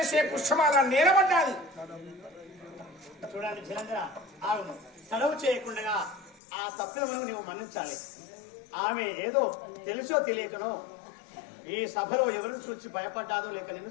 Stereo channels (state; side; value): drops out; right; at 6.4 s